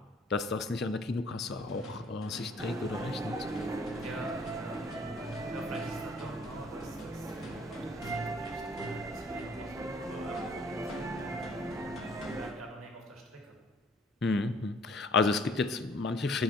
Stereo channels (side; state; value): both; normal; correlation 0.58